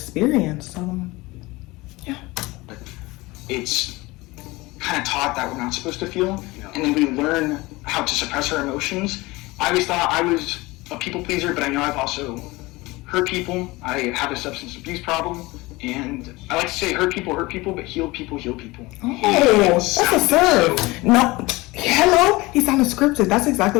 So yeah. it's kind of taught that we're not supposed to feel, and then we learn how to suppress our emotions. I always thought I was a people pleaser, but I know I've also hurt people. I have a substance abuse problem, and I like to say hurt people, but heal people, heal people. Oh, that's a serve. No, hello, he sounded scripted. That's exactly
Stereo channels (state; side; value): quieter; right; 21.6 dB